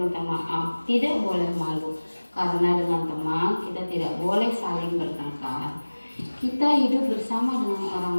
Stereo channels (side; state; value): both; inverted; correlation -1.00